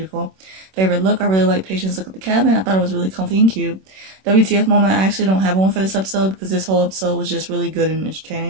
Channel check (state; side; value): late; left; 26 ms